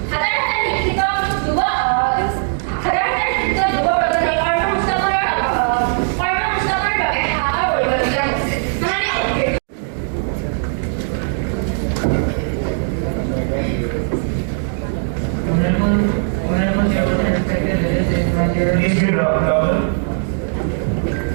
Please be louder.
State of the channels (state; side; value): silent; left; 62 dB below the other